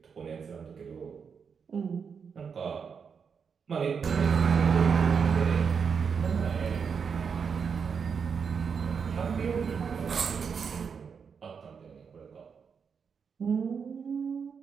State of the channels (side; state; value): left; quieter; 6.3 dB